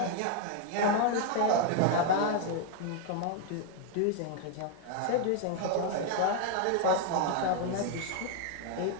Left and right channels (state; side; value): different; both; correlation 0.00